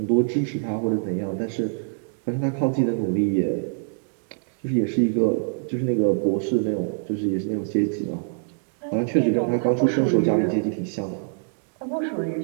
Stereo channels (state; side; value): silent; left; 62 dB below the other